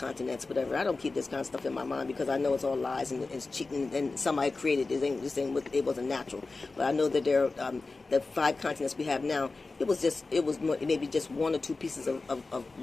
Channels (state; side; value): quieter; right; 3.7 dB